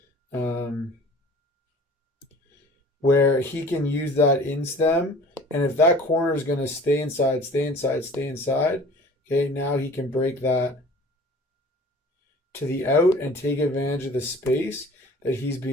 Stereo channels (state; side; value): normal; both; correlation 0.46